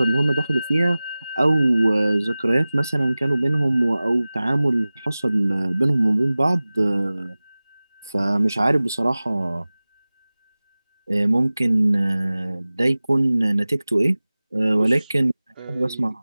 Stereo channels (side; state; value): both; inverted; correlation -0.98